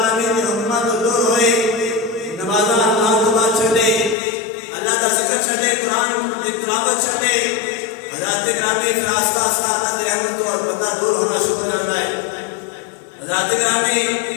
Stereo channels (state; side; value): drops out; right; at 4.2 s